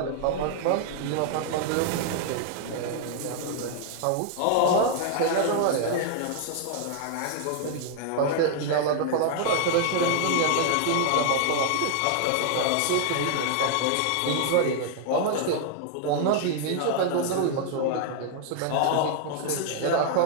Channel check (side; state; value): both; different; correlation 0.00